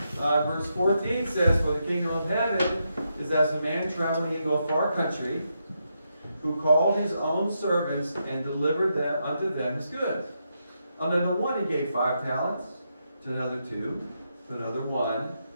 verse 14 says, "For the kingdom of heaven is as a man traveling into a far country, who called his own servants and delivered them unto them his goods. Unto the one he gave 5 talents, to another 2, to another 1,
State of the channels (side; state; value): both; inverted; correlation -0.82